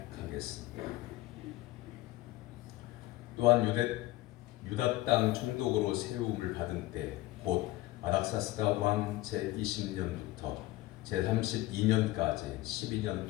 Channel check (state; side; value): quieter; right; 17.6 dB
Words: 또한 유다 땅 총독으로 세움을 받은 때 곧 아닥사스다 왕 제20년부터 제32년까지 12년